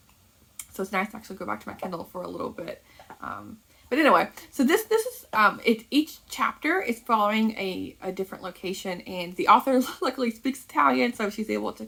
so it's nice to actually go back to my Kindle for a little bit. But anyway, so this is each chapter is following a different location, and the author luckily speaks Italian, so she's able to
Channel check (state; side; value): identical; both; correlation 1.00